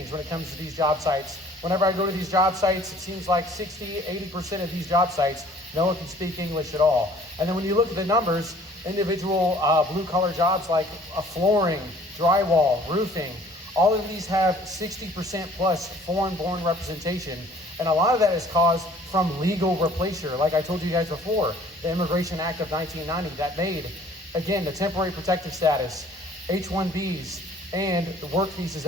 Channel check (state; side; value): normal; both; correlation 0.54